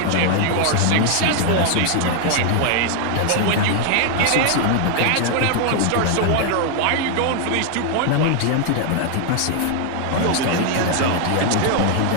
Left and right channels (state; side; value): different; both; correlation 0.00